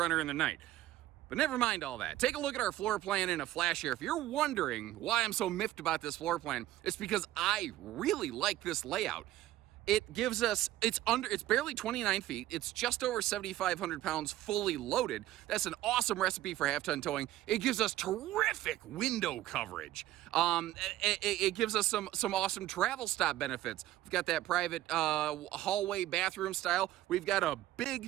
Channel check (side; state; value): left; quieter; 14.7 dB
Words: in the night. But never mind all that. Take a look at our floor plan in a flash here. If you're wondering why I'm so miffed about this floor plan, it's because I really like this layout. It gives us, it's barely 29 feet. It's just over 7,500 pounds fully loaded. That's an awesome recipe for half-ton towing. It gives us terrific window coverage. It gives us some awesome travel stop benefits. We've got that private hallway bathroom style. We've got a